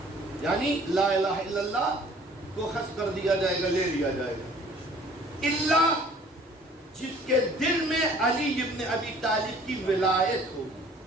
یعنی لا الہ الا اللہ کو حذف کر دیا جائے گا، لے لیا جائے گا. اللہ جس کے دل میں علی ابن ابی طالب کی ولایت ہوگی.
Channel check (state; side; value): normal; both; correlation 0.53